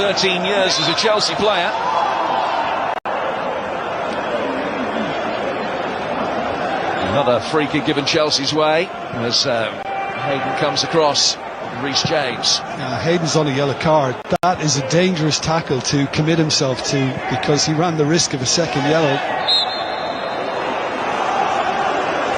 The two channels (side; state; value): both; identical; correlation 1.00